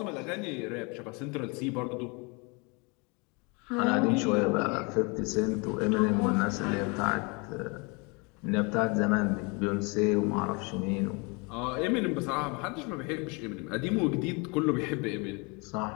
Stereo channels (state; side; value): quieter; right; 30.6 dB